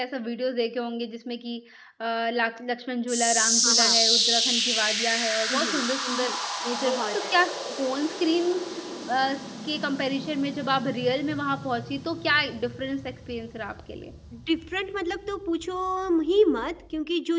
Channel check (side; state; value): both; identical; correlation 1.00